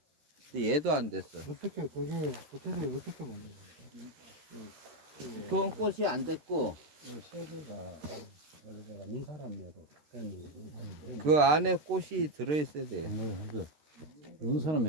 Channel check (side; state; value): left; late; 13 ms